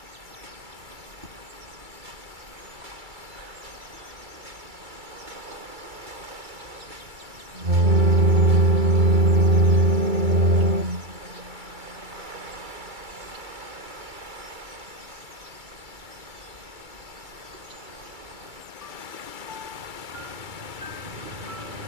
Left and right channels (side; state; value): left; late; 2.3 ms